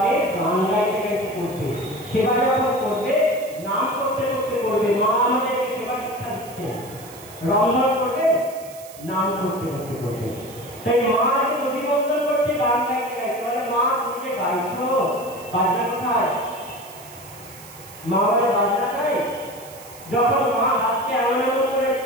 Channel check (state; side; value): noise; right; hiss, 19 dB below the sound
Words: গান গাইতে গাইতে করবে, সেবা যখন করবে নাম করতে করতে করবে। মা আমাদেরকে সেবা শিক্ষা দিচ্ছে। রন্ধন করবে নাম করতে করতে করবে। তাই মা এসে দধি মন্থন করছে গান গাইতে গাইতে। বলে, মা তুমি যে গাইছো, বাজনা কোথায়? মা বলে, বাজনা চাই। যখন মা হাতকে এমন এমন করে